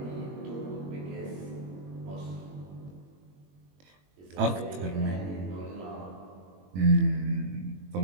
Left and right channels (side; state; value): left; late; 21 ms